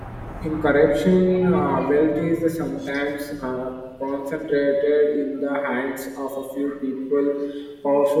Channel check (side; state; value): both; identical; correlation 1.00